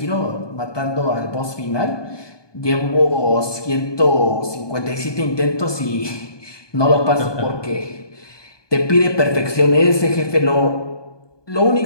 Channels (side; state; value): right; late; 1.2 ms